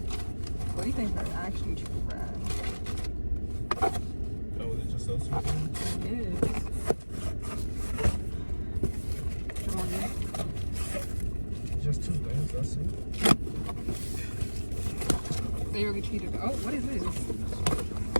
What do you think are actually true friends? Oh, is it just those two things? It is. Come on, dude. Just two things, that's it. They really cheated. Oh, what is this?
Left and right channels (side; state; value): both; inverted; correlation -1.00